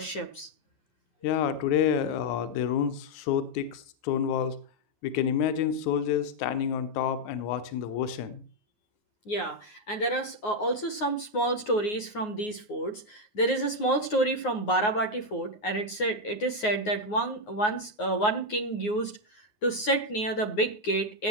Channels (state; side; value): late; right; 9.5 ms